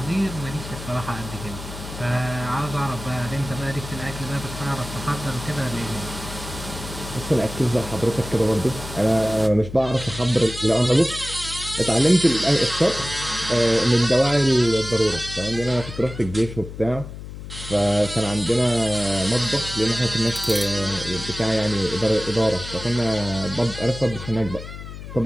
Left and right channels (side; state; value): left; noise; hum, 11 dB below the sound